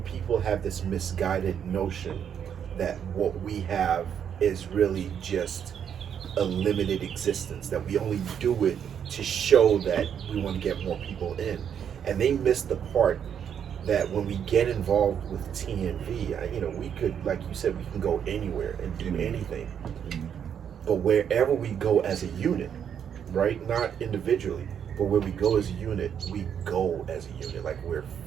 people have this misguided notion that what we have is really just a limited existence, that we only do it to show that we want to get more people in. And they miss the part that when we get involved with TNV, we could, like you said, we can go anywhere and do anything. But wherever we go as a unit, right? Not individually, but where we go as a unit, we go as a unit, like we're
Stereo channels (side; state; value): left; quieter; 8.4 dB